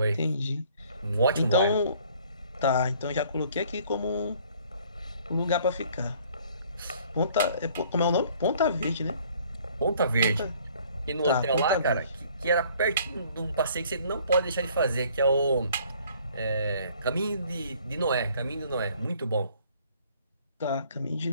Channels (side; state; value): both; inverted; correlation -0.57